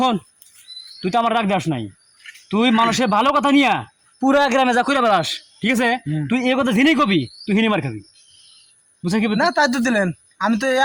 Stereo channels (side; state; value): both; identical; correlation 1.00